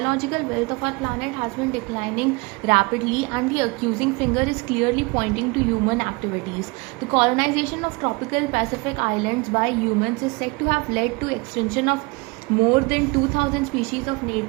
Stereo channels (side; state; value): left; quieter; 26.7 dB